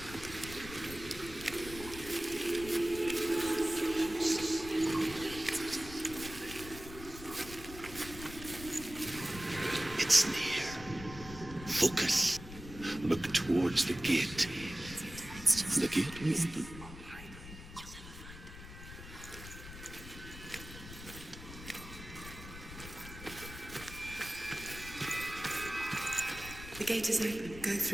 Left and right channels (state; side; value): noise; left; rumble, 13 dB below the sound